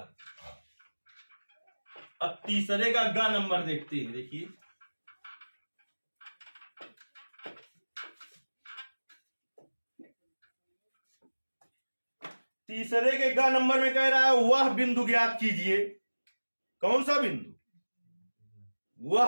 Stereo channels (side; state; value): both; inverted; correlation -1.00